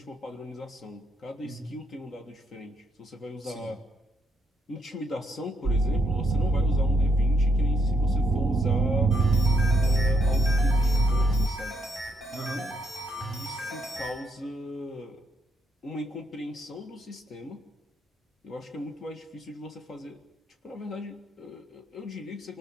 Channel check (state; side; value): normal; both; correlation 0.75